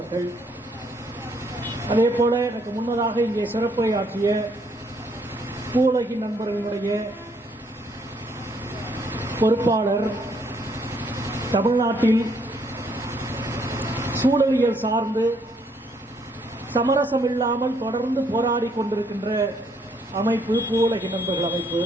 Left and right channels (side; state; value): both; normal; correlation 0.69